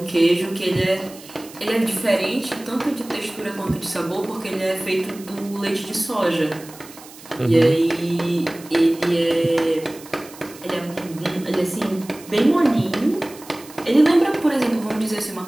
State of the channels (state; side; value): noise; right; hiss, 19 dB below the sound